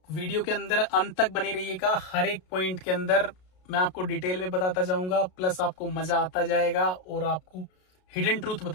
वीडियो के अंदर अंत तक बने रहिएगा, हर एक पॉइंट के अंदर मैं आपको डिटेल में बताता जाऊंगा, प्लस आपको मजा आता जाएगा और आपको हिडन ट्रूथ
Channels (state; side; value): late; right; 33 ms